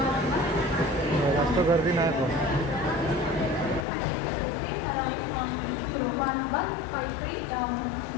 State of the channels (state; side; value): drops out; right; at 3.9 s